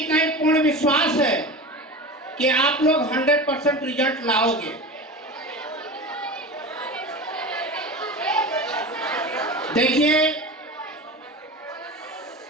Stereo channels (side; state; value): both; normal; correlation 0.30